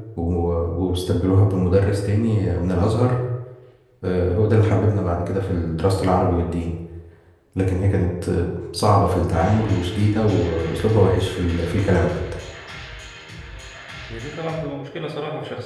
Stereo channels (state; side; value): identical; both; correlation 1.00